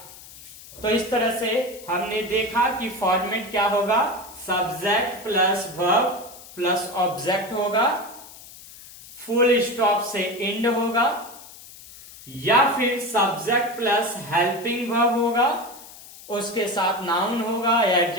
तो इस तरह से हमने देखा कि फॉर्मेट क्या होगा, subject plus verb plus object होगा, फुल स्टॉप से एंड होगा, या फिर सब्जेक्ट प्लस हेल्पिंग वर्ब होगा, उसके साथ नाउन होगा या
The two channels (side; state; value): left; noise; hiss, 18 dB below the sound